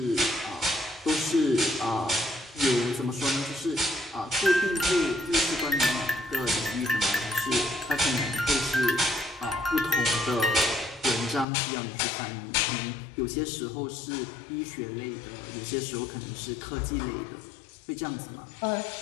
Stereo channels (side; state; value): right; drops out; at 11.5 s